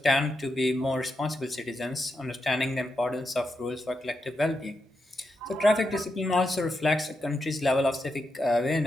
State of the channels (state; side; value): normal; both; correlation 0.85